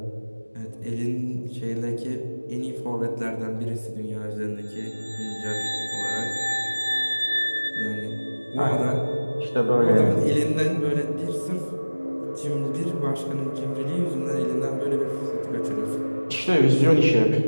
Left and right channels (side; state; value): both; inverted; correlation -1.00